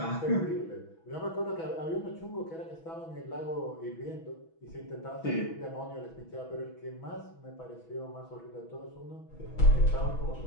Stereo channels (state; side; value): late; right; 6.1 ms